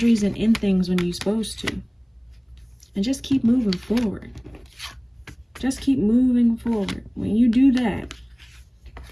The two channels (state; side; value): identical; both; correlation 1.00